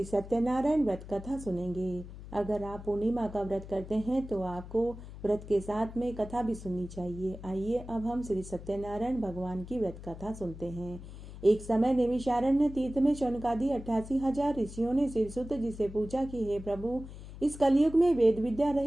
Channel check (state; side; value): noise; left; hum, 13 dB below the sound